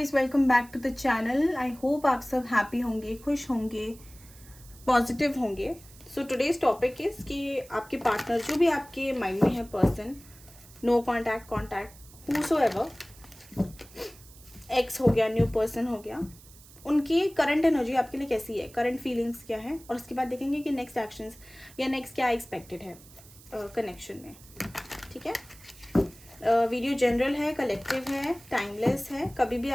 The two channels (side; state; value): right; noise; hiss, 22 dB below the sound